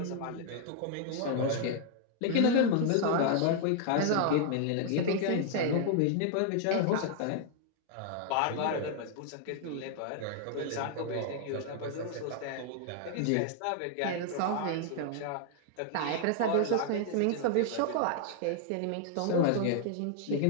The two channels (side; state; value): both; different; correlation 0.00